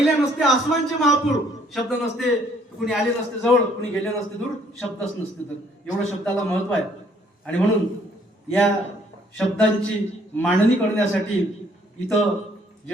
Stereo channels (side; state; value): both; normal; correlation 0.63